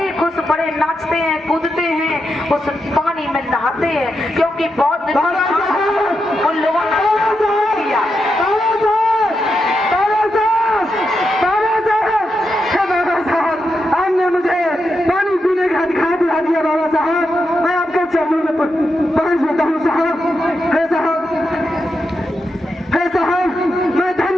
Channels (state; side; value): normal; both; correlation 0.86